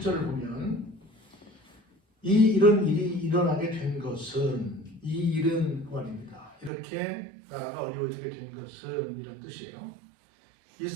보면, 이런 일이 일어나게 된 것은, 이 일은 말입니다. 이렇게 나라가 어려워지게 된 것은 이런 뜻이에요.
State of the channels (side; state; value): left; drops out; at 6.7 s